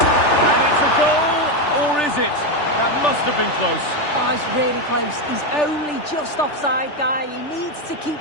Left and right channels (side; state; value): right; late; 3.4 ms